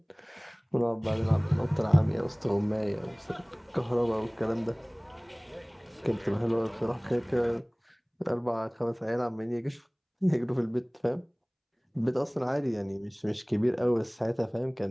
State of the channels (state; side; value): identical; both; correlation 1.00